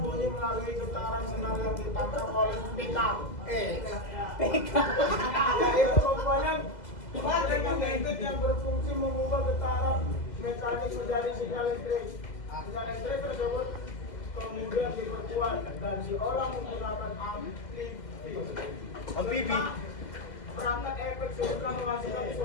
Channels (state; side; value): late; right; 2.0 ms